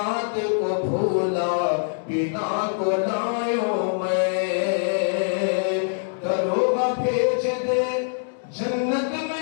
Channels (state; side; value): silent; right; digital silence